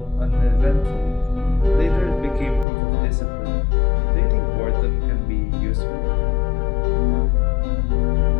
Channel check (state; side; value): drops out; right; at 2.7 s